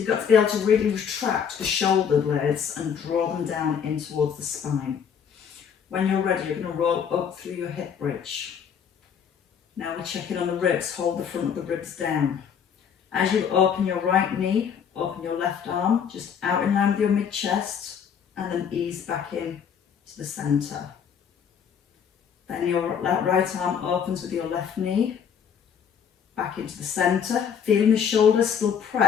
got to be able to really retract the shoulder blades and draw them down in towards the spine. When you're ready, you're going to roll up through your hip bridge. Now we're checking on the ribs. Hold the front of the ribs down. As you open your right knee, open your left arm, just out in line with your mid-chest, and then ease back in to the centre. Then your right arm opens with your left knee, back into the centre, feeling the shoulders still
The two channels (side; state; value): right; quieter; 7.5 dB